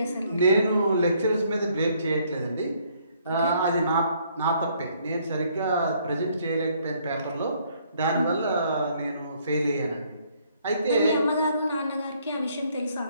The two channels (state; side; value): inverted; both; correlation -0.66